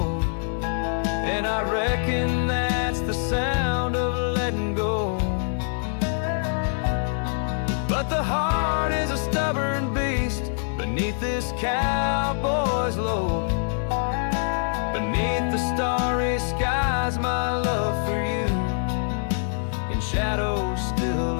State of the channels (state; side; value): silent; right; digital silence